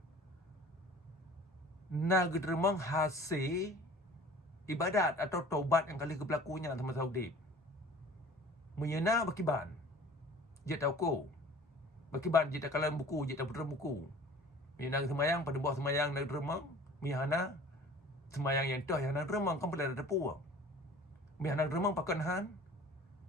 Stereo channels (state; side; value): normal; both; correlation 0.46